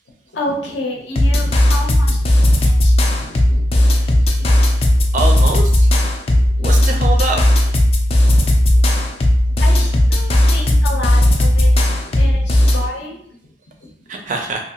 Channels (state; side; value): normal; both; correlation 0.91